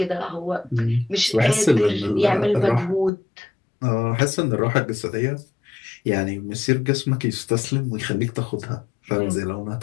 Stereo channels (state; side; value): drops out; right; at 3.1 s